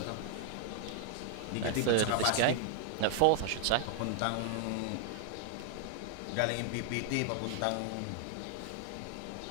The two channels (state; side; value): different; both; correlation 0.00